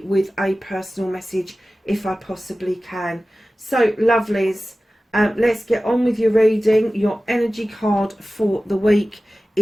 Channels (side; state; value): both; normal; correlation 0.96